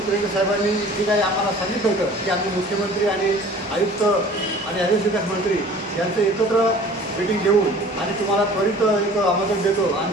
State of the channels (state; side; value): normal; both; correlation 0.46